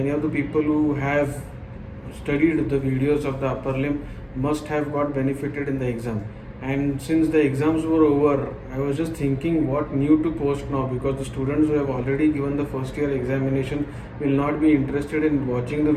of the people who have studied the videos of the upper limb must have got benefited in the exam. And since the exams were over, I was just thinking what new to post now, because the students who have already given the first year examination will not be interested in watching the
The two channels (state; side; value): identical; both; correlation 1.00